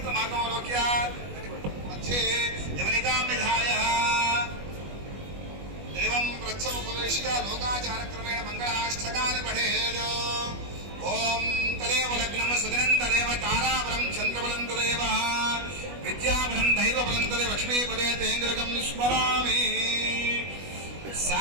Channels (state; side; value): late; left; 21 ms